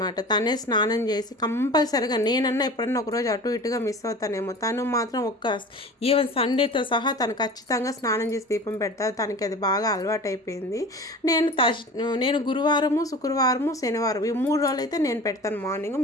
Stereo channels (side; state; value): both; normal; correlation 0.38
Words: తనే స్నానం చేసి కంపల్సరిగా. నేనన్నా ఎప్పుడన్నా ఒకరోజు అటు ఇటుగా మిస్ అవుతానేమో, తను మాత్రం ఈవెన్ సండేతో సహా తను ఖచ్చితంగా స్నానం చేసి దీపం పెడతారు. తనకి అది బాగా అలవాటు అయిపోయింది. నేను గురువారము, శుక్రవారము, శనివారం ఈ 3 రోజులు అయితే నేను పెడతాను మార్నింగ్,